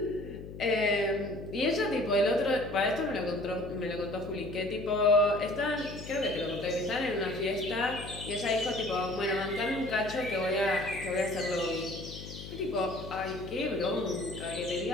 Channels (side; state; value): left; noise; hum, 12 dB below the sound